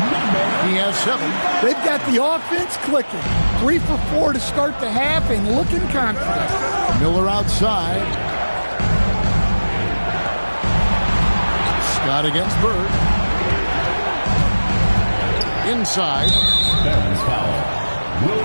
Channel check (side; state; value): both; inverted; correlation -1.00